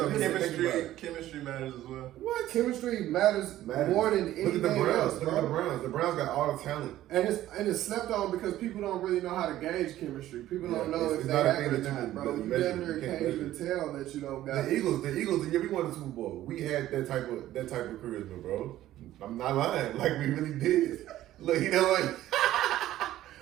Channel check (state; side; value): quieter; left; 13.9 dB